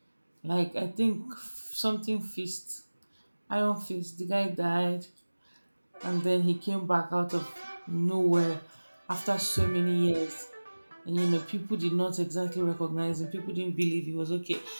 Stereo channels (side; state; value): both; inverted; correlation -1.00